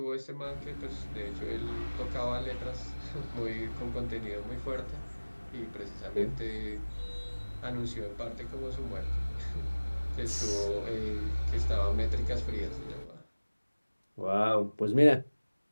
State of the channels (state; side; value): inverted; both; correlation -1.00